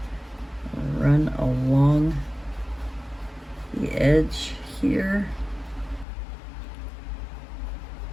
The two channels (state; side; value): drops out; right; at 6.1 s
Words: run along the edge here